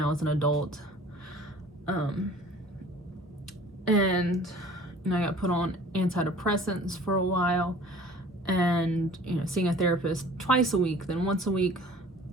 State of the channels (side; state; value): both; normal; correlation 0.48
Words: as an adult. And you know, I got put on antidepressants for a while, and you know, seeing a therapist twice a week, then once a week,